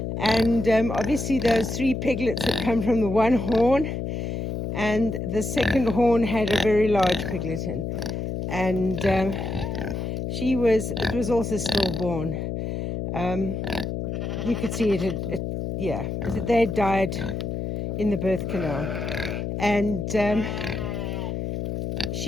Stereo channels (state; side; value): noise; left; hum, 3 dB below the sound